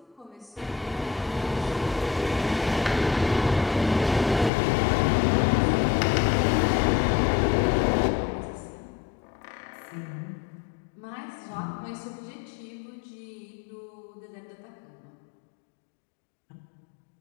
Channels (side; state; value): right; drops out; at 4.5 s